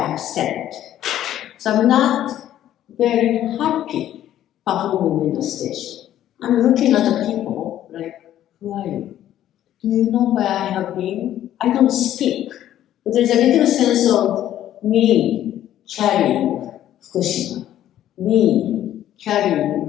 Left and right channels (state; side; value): quieter; right; 12.1 dB